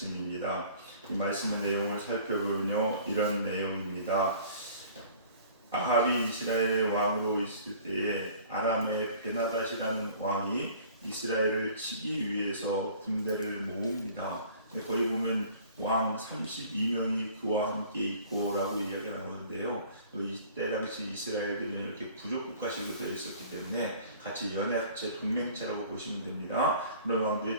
이 말씀의 내용을 살펴보면요, 이런 내용입니다. 아합이 이스라엘의 왕으로 있을 때에 아람의 베나닷이라는 왕이 이스라엘을 치기 위해서 군대를 모읍니다. 거기 보면 왕 32명이 그와 함께 있고라고 이야기가 나오는데요. 이때 당시 이스라엘들은 이렇게 부족 국가식으로 되어 있었기 때문에 같이 연합체 동맹체라고 보시면 됩니다. 그런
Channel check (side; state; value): both; inverted; correlation -0.49